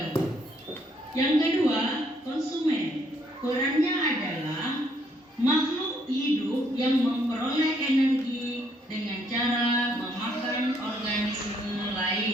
Yang kedua, konsumen. Perannya adalah makhluk hidup yang memperoleh energi dengan cara memakan organisme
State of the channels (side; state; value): both; normal; correlation 0.69